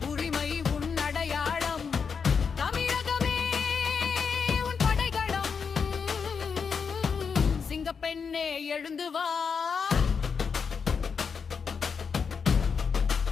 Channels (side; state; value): right; quieter; 5.9 dB